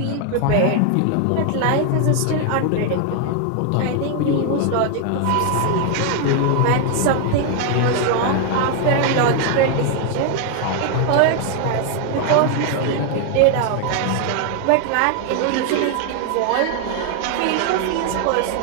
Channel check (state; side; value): different; both; correlation 0.00